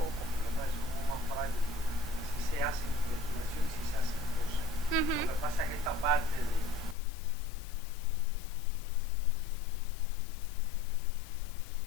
Si se hace investigación, si se hacen cosas. Lo que pasa es que esta parte de la investigación propiamente está engorrosa y tan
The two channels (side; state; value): right; drops out; at 7.0 s